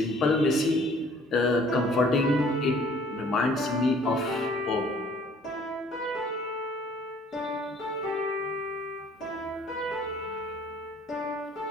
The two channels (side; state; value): both; normal; correlation 0.56